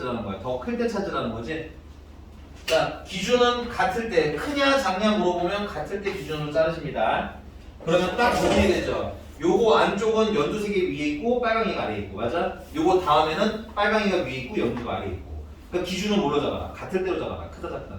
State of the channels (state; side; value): identical; both; correlation 1.00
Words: 거야? 더 클 때 찾으라는 거지? 자, 기준은 같을 때, 크냐 작냐 물어보면 같을 때 기준으로 자르십니다. 그러면 딱 정리가 되죠. 요거 안쪽은 연두색이 위에 있고 빨강이가 아래에 있고, 맞아? 요거 다음에는 빨강이가 위에 있고 연두가 아래에 있고. 그러니까 기준은 뭘로 잡아라? 같을 때로 잡아라. 크다